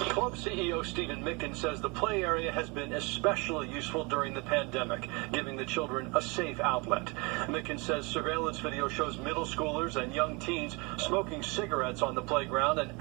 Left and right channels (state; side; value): quieter; left; 28.0 dB